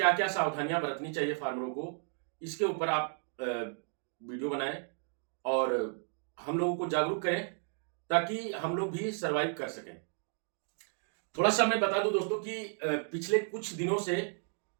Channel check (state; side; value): silent; left; 55 dB below the other